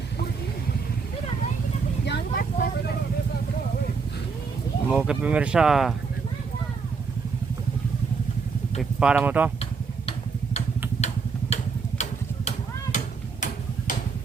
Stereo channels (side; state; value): left; quieter; 5.1 dB